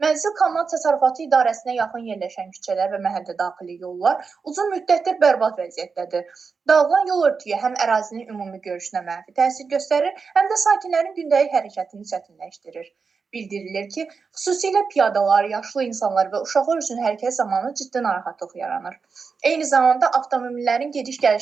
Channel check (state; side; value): quieter; left; 5.2 dB